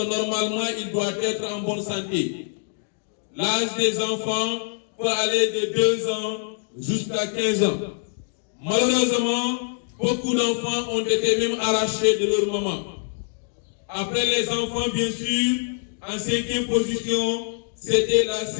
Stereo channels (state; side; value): silent; right; digital silence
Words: normalement il doit être en bonne santé. L'âge des enfants peut aller de 2 ans jusqu'à 15 ans. Malheureusement, beaucoup d'enfants ont été même arrachés de leur maman. Après les enfants, bien sûr, en 5e position, c'était la